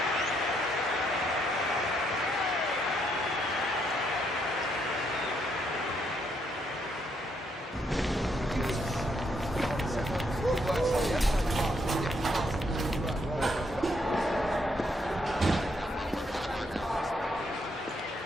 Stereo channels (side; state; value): both; normal; correlation 0.74